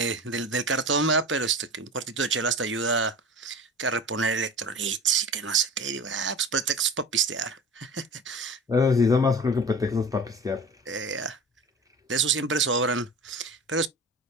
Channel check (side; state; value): both; normal; correlation 0.35